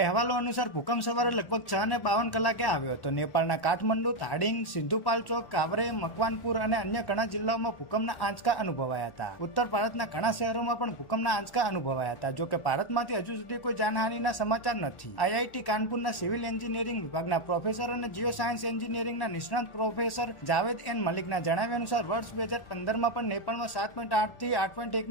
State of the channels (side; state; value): right; late; 1.4 ms